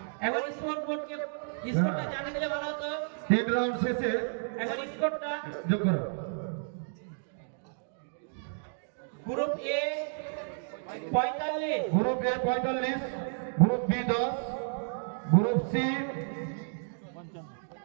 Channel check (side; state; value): left; silent; digital silence